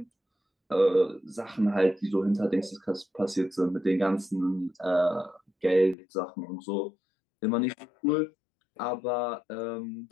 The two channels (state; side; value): drops out; right; at 6.0 s